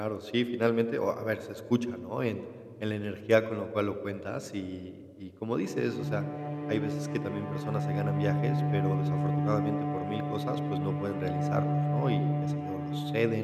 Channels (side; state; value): both; identical; correlation 1.00